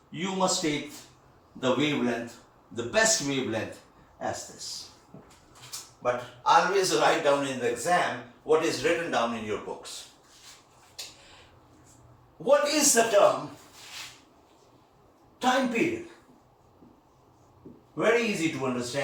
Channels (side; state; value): both; identical; correlation 1.00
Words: you must take the wavelength, the best wavelength as this. But always write down in the exam what is written down in your books. What is the term time period? Very easy to